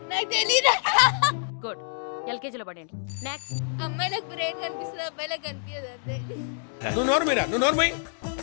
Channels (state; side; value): silent; right; digital silence